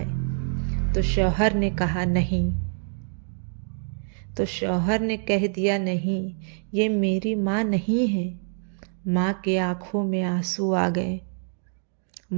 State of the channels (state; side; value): silent; left; 61 dB below the other